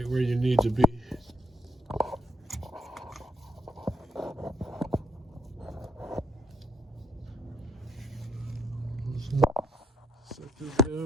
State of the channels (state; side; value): normal; both; correlation 0.74